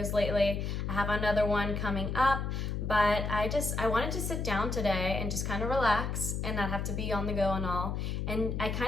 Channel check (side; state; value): left; noise; hum, 2 dB below the sound